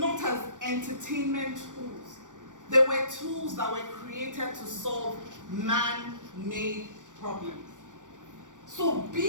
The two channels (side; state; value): left; late; 0.87 ms